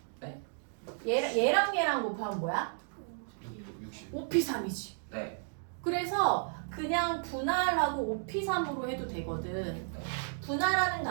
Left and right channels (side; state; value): left; silent; digital silence